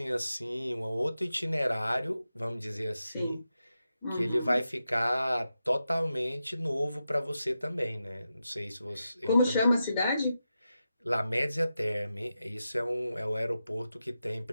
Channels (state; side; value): inverted; both; correlation -0.90